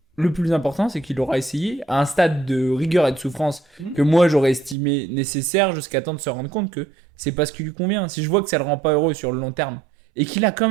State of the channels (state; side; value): drops out; left; at 4.8 s